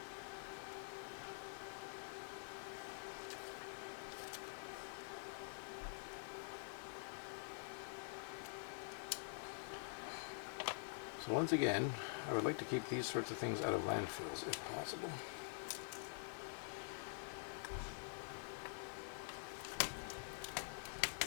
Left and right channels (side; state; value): right; silent; digital silence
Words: So once again, I would like to keep these sorts of things out of landfills if possible.